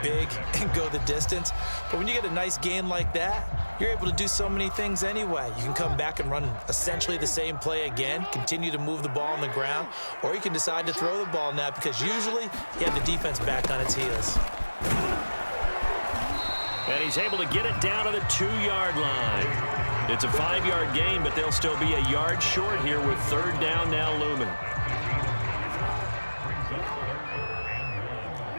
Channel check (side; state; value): both; inverted; correlation -1.00